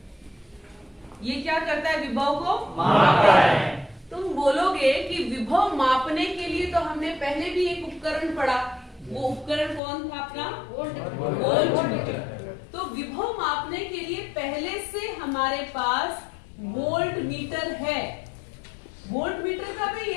ये क्या करता है? विभव को मापता है। तुम बोलोगे कि विभव मापने के लिए तो हमने पहले भी एक उपकरण पढ़ा, वो उपकरण कौन था अपना? वोल्टमीटर। तो विभव मापने के लिए पहले से हमारे पास वोल्ट मीटर है। वोल्ट मीटर का भी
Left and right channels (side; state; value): right; drops out; at 9.8 s